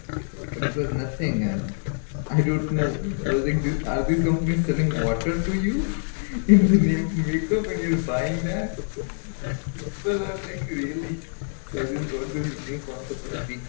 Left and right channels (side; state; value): right; silent; 61 dB below the other